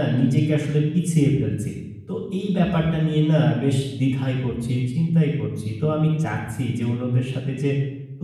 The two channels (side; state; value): both; identical; correlation 1.00